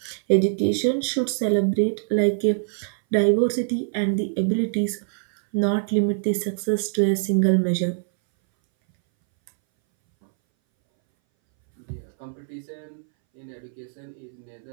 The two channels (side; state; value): left; silent; 61 dB below the other